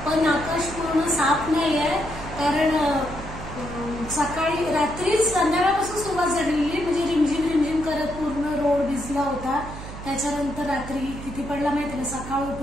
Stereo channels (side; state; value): right; noise; hum, 11 dB below the sound